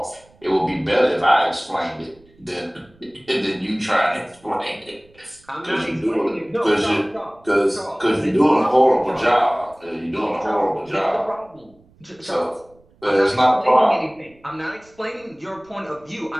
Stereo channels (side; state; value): right; noise; rumble, 30 dB below the sound